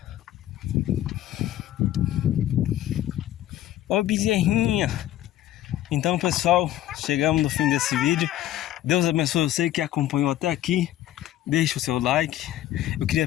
Ô, bezerrinha. Então, pessoal, chegamos no fim desse vídeo. Deus abençoe você que acompanhou até aqui. Deixa o seu like. Eu queria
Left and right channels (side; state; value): right; quieter; 13.3 dB